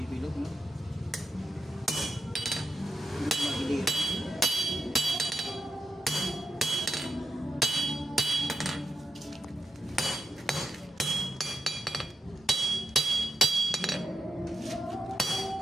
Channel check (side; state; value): both; normal; correlation 0.84